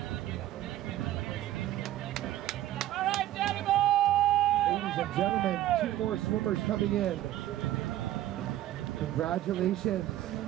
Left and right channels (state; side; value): quieter; left; 13.8 dB